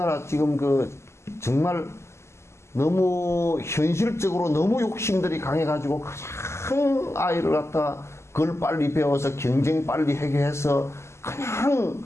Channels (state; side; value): late; right; 0.13 ms